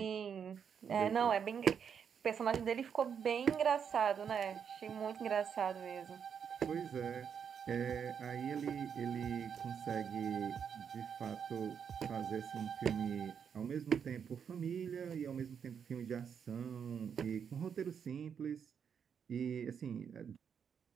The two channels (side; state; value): left; quieter; 7.4 dB